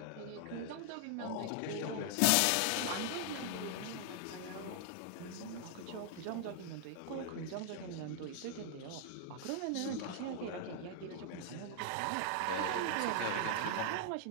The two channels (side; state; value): both; different; correlation 0.00